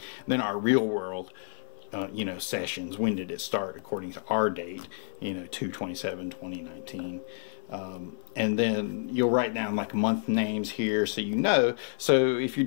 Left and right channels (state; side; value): silent; right; 56 dB below the other